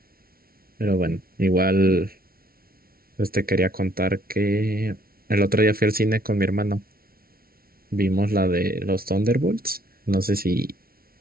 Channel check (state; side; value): late; left; 0.43 ms